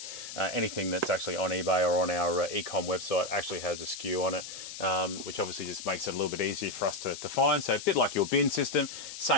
anything that's actually on eBay or on our e-com website actually has a SKU on it, which obviously just makes it a little bit easier for us to find. So a bit like your bin system,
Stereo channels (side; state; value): left; noise; hiss, 10 dB below the sound